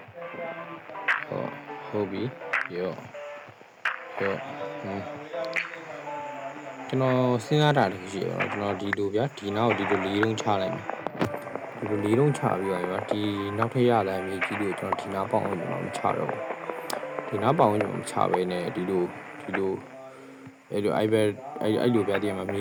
ဟုတ်ပြီရောကျွန်တော်စဉ်းစားတာတခုရှိရပါတော့ကျွန်တော်ဒီလိုဗျာဒီနောက်ဒီလိုလေးလုံးချလိုက်မယ်ဒီလိုလေးလုံးချပြီးတော့ဗျာဒီနောက်ထပ်ရလာမြေကြီးတွေကိုကျွန်တော်ဒီနားပေါအောင်ကျွန်တော်မချတော့ဘူးဒီနားပေါအောင်ကျွန်တော်မချဘဲနဲ့ဒီလိုအဲ့လို iPad အဲ့လိုပြတဲ့မှာမြ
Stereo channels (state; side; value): identical; both; correlation 1.00